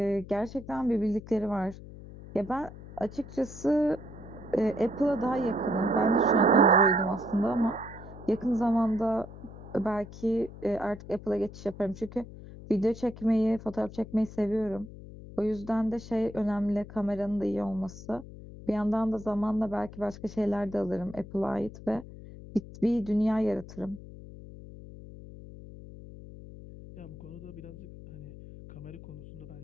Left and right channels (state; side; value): noise; left; hum, 15 dB below the sound